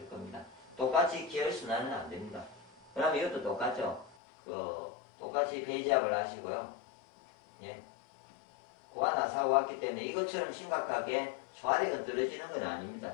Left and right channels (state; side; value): drops out; right; at 4.2 s